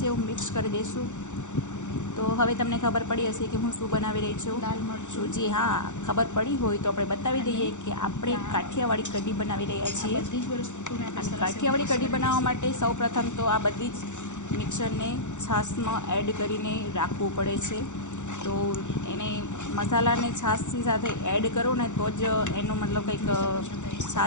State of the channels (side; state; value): right; late; 0.85 ms